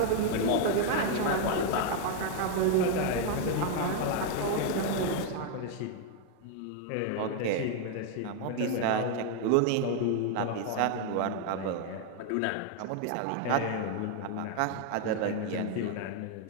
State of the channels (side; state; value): both; different; correlation 0.00